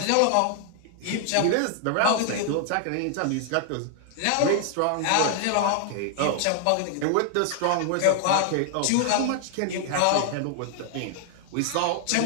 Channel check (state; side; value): different; both; correlation 0.00